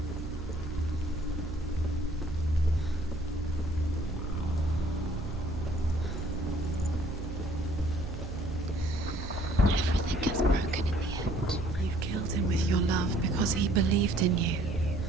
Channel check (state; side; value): noise; right; hum, 8 dB below the sound